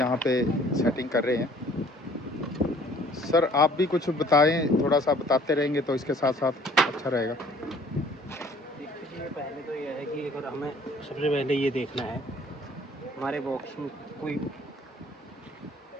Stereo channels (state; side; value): normal; both; correlation 0.55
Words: पे सेटिंग कर रहे हैं। सर आप भी कुछ बताएं, थोड़ा सा बताते रहेंगे तो इसके साथ साथ अच्छा रहेगा। देखिए पहले तो यह है कि अगर हमें सबसे पहले ये देखना है हमारे बॉक्स में